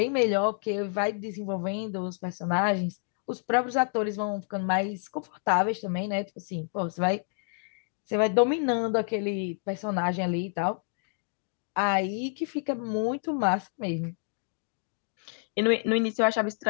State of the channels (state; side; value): silent; right; 57 dB below the other